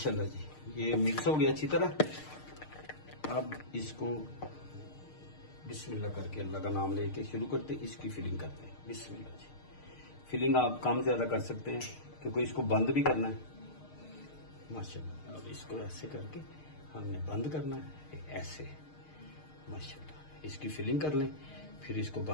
जी ये मिक्स हो गया अच्छी तरह। अब इसको बिस्मिल्लाह करके अल्लाह का नाम लेके शुरू करते, इसकी फिलिंग करते हैं। बिस्मिल्लाह जी। फिलिंग आप कम ज्यादा कर सकते हैं, क्योंकि इसको बंद भी करना है। माशाल्लाह अब इसको ऐसे करके हमने बंद करना है, ऐसे। माशाल्लाह इसकी फिलिंग कर लें, फिर इसको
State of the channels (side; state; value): right; late; 6.5 ms